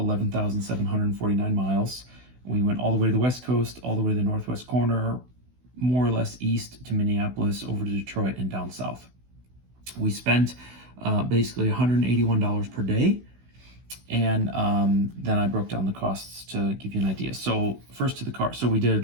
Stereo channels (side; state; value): left; late; 16 ms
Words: miles. We went all the way to the West Coast, all the way to the Northwest corner, more or less east to Minneapolis, over to Detroit, and down south. We spent basically $181 per day. And then I broke down the costs to give you an idea. So first to the car. So we did